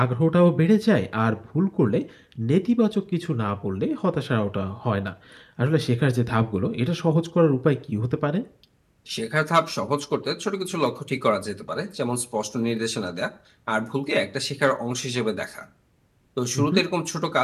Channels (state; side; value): identical; both; correlation 1.00